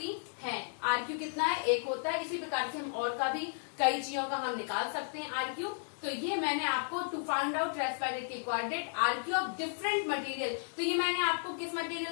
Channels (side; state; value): right; silent; digital silence